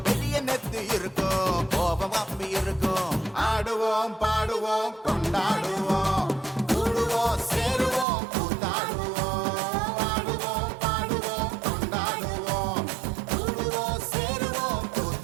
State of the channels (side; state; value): left; drops out; at 8.1 s